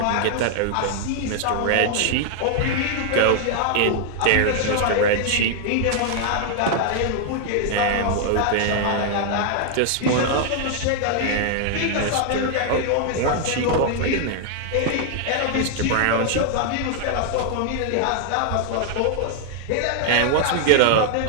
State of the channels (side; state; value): both; different; correlation 0.00